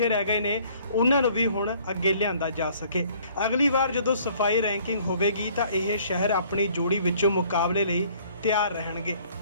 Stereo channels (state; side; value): inverted; both; correlation -0.58